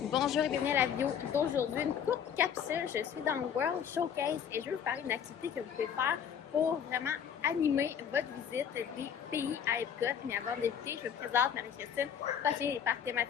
Bonjour et bienvenue à la vidéo d'aujourd'hui, une courte capsule. Je suis dans le World Showcase et je vais vous parler d'une activité que vous pouvez faire pour vraiment animer votre visite des pays à Epcot. Mais avant de débuter, je vous présente Marie-Christine, passionnée des parcs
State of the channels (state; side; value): quieter; right; 8.2 dB